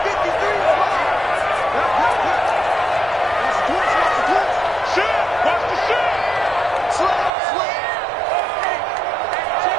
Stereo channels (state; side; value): drops out; left; at 7.3 s